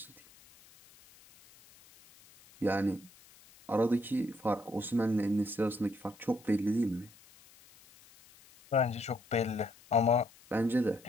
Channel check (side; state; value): left; noise; hiss, 25 dB below the sound